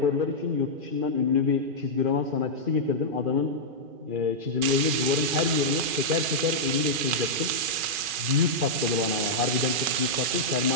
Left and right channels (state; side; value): late; left; 2.4 ms